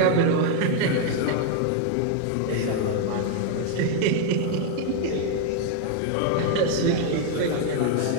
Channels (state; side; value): different; both; correlation 0.00